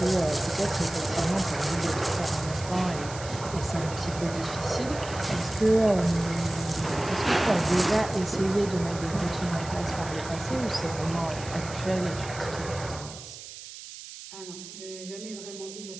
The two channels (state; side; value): noise; right; hiss, 13 dB below the sound